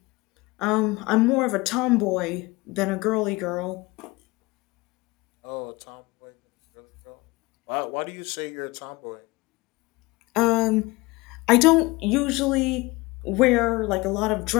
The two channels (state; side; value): quieter; right; 22.9 dB